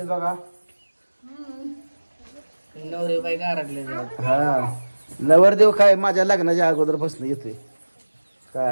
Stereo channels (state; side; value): inverted; both; correlation -1.00